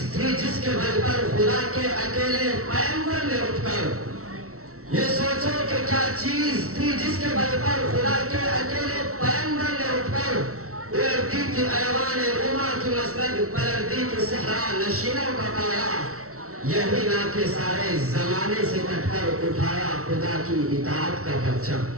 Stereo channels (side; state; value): left; late; 0.63 ms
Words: تھی جس کے بل پر خدا کے اکیلے پیغمبر نے اٹھ کر، یہ سوچو کہ کیا چیز تھی جس کے بل پر خدا کے اکیلے پیغمبر نے اٹھ کر اڑتی تھی ایوان روما کی مسند، پلٹتی تھی صحرا نشینوں کا پایا، یہی نہ کہ سارے زمانے سے کٹ کر اٹھایا خدا کی اطاعت کا پرچم،